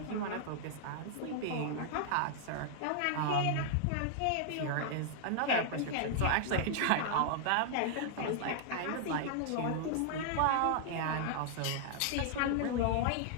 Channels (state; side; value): different; both; correlation 0.00